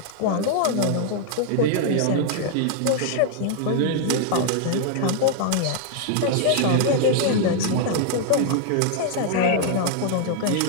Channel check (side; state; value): both; different; correlation 0.00